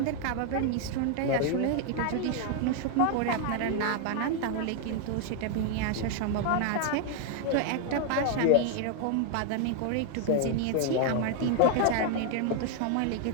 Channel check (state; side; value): different; both; correlation 0.00